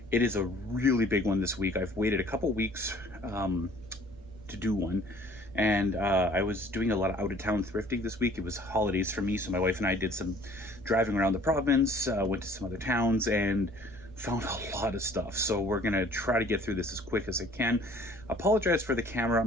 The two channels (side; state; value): both; normal; correlation 0.53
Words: It is a really big one this week. I've waited a couple weeks to do one, and I was doing a lot of out-of-town thrifting this week. It was holidays for me, so my wife and I did some driving around the province, went to some other towns, and found a lot of stuff. So we're gonna try to get through this as quick as I can. Apologize for the camera.